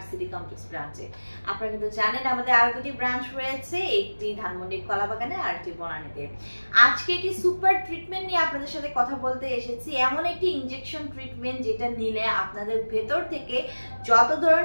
সিটি কমপ্লেক্স ব্রাঞ্চে। আপনারা কিন্তু জানেন আমাদের আরো দুটি ব্রাঞ্চ রয়েছে, একটি ধানমন্ডি কলাবাগানে আর একটি বনানীতে। আজকে একটি সুপার ট্রিটমেন্ট নিয়ে আপনাদের সাথে কথা বলতে এসেছি। এমন একটি ইনজেকশন ট্রিটমেন্ট যেটা নিলে আপনাদের ভেতর থেকে যত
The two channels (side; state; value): both; inverted; correlation -1.00